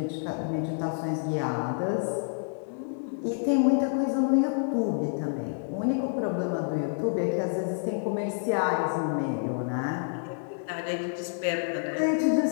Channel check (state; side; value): silent; right; digital silence